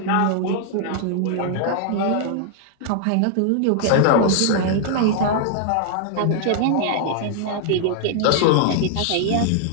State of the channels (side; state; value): both; different; correlation 0.00